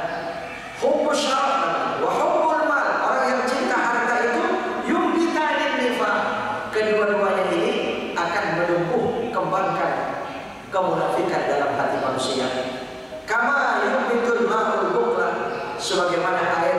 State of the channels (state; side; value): identical; both; correlation 1.00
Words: hubbus syaraf wa hubbul mal, orang yang cinta harta itu yumbitanin nifaq. Kedua-duanya ini akan menumbuh kembangkan kemunafikan dalam hati manusia. Kama yumbitul ma'ul bukla, sebagaimana